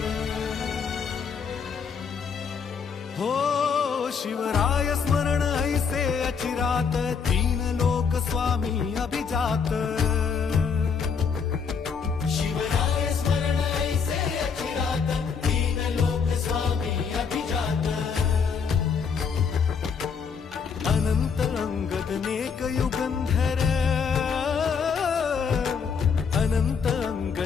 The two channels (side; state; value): right; quieter; 6.1 dB